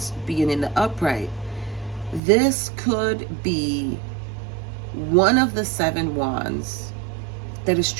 being in the upright. This could be one of the seven wands that is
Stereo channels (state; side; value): drops out; left; at 2.2 s